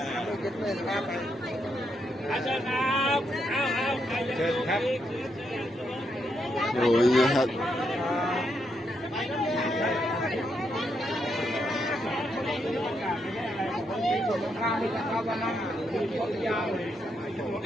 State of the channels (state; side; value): normal; both; correlation 0.79